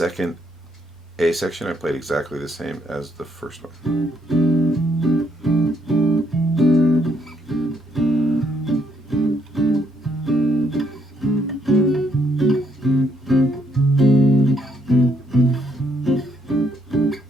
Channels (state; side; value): normal; both; correlation 0.72